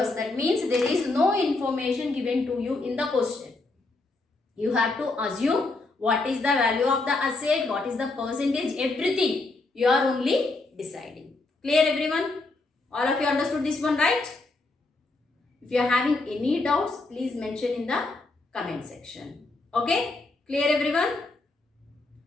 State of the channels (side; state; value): right; quieter; 3.3 dB